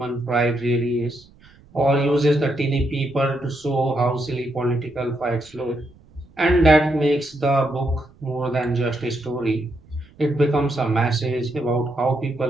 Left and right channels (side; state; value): right; noise; rumble, 26 dB below the sound